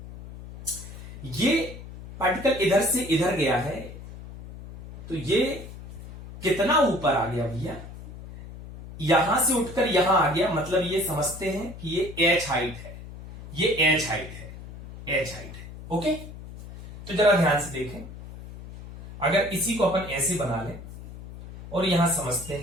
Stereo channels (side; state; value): left; noise; hum, 14 dB below the sound